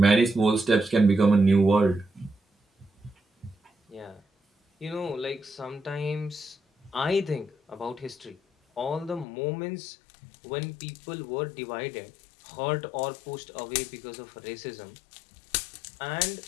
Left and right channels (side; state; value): right; drops out; at 9.2 s